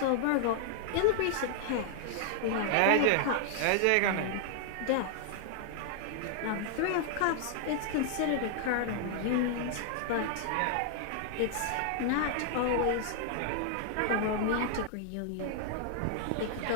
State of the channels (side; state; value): both; different; correlation 0.00